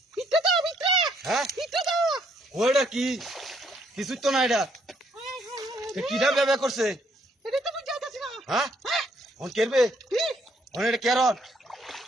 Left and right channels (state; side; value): normal; both; correlation 0.69